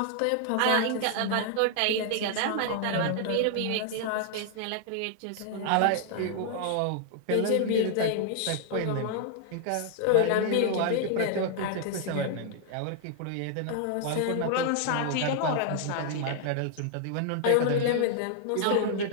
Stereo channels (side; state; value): both; different; correlation 0.00